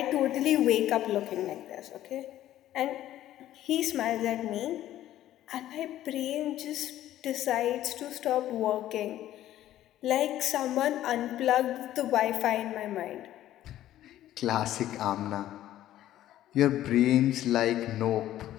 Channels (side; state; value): right; quieter; 13.1 dB